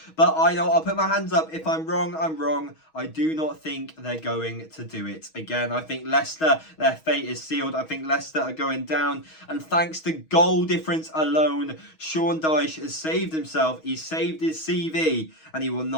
but I know I'll put my hands up. If I'm wrong, I'm wrong. I do not think they're going to do it again. I think Leicester, their fate is sealed. I think Leicester are going down. And thanks to goal difference alone, Sean Dyche has saved himself. He's saved his CV and he will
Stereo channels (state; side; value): late; right; 6.3 ms